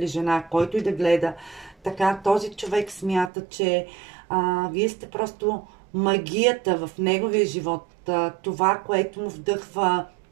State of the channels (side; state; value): left; drops out; at 3.3 s